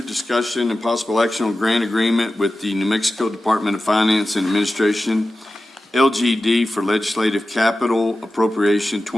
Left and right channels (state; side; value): normal; both; correlation 0.94